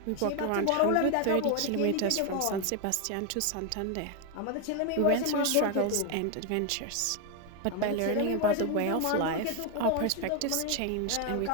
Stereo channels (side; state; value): both; different; correlation 0.01